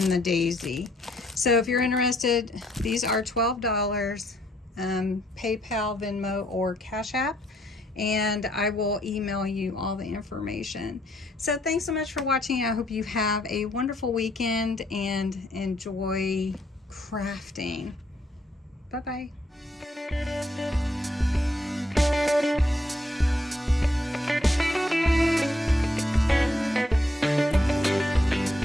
the daisy. So if you're interested, these are $12, PayPal, Venmo, or Cash App, and I will email you all the information. So thanks so much for watching. I hope you have a wonderful weekend and enjoy crafting. Bye-bye.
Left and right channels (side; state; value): both; normal; correlation 0.71